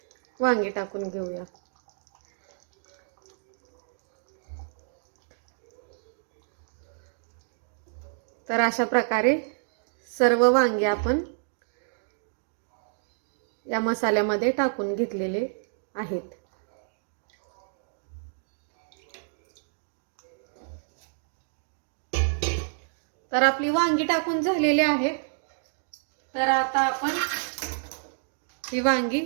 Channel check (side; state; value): left; silent; digital silence